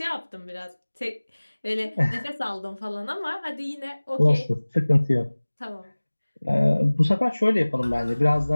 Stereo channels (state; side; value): inverted; both; correlation -1.00